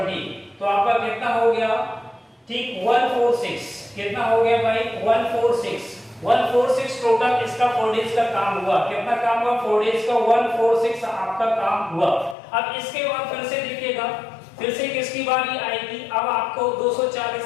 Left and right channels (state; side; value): drops out; right; at 12.4 s